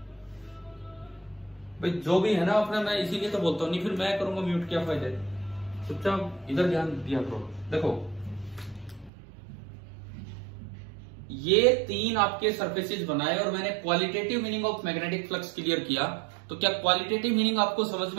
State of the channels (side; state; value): left; drops out; at 9.1 s